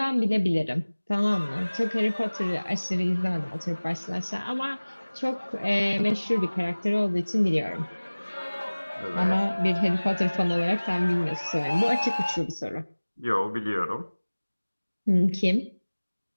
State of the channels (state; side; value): inverted; both; correlation -1.00